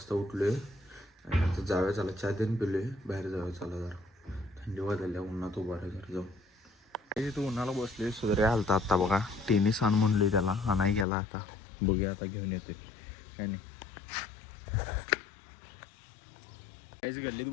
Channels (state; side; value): drops out; right; at 11.1 s